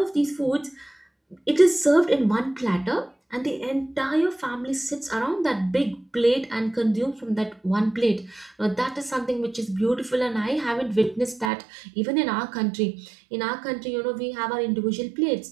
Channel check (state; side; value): drops out; left; at 11.5 s